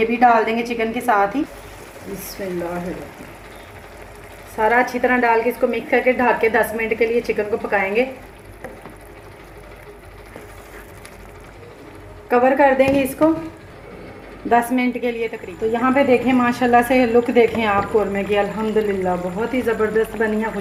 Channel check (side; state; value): both; identical; correlation 1.00